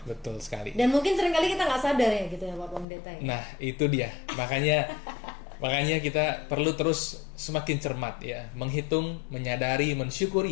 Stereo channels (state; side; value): drops out; right; at 2.9 s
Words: betul sekali. Dan mungkin seringkali kita nggak sadar ya gitu ya Pak Pendeta ya. Nah, itu dia. Makanya kita perlu terus semakin cermat ya, menghitung, menyadari,